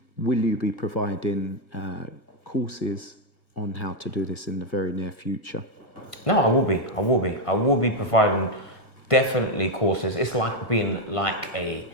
Will you be providing courses on how to do this in the very near future? No, I will be providing definitely courses. It's like being like a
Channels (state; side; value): late; right; 1.5 ms